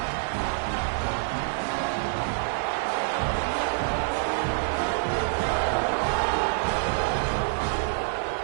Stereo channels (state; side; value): silent; left; 60 dB below the other